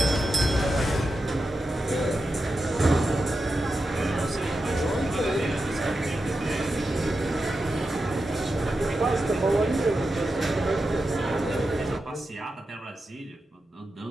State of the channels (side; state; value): both; normal; correlation 0.89